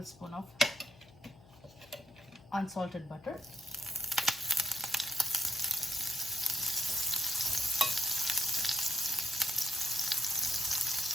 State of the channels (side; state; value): left; noise; hum, 24 dB below the sound